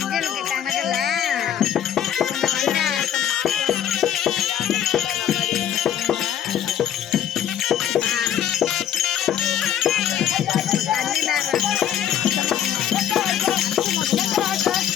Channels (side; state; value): right; quieter; 10.2 dB